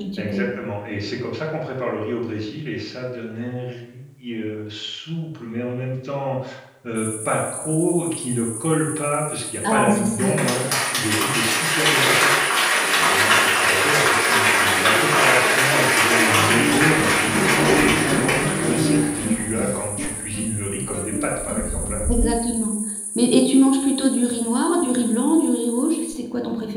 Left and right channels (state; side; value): identical; both; correlation 1.00